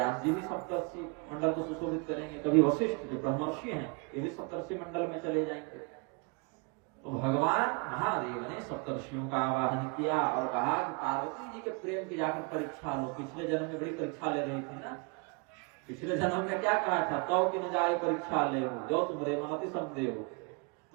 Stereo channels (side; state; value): left; quieter; 32.3 dB